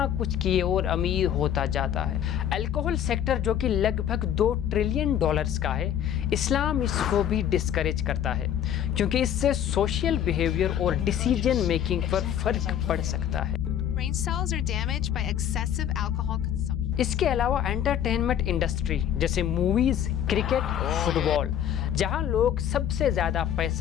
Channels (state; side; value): quieter; right; 10.0 dB